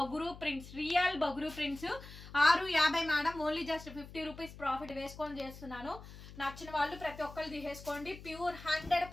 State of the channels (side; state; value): left; noise; hum, 15 dB below the sound